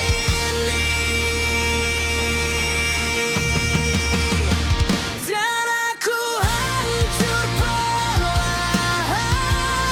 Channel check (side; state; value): both; identical; correlation 1.00